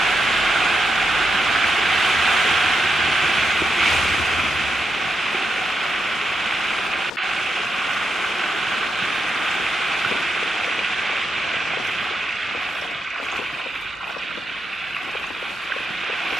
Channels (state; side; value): normal; both; correlation 0.84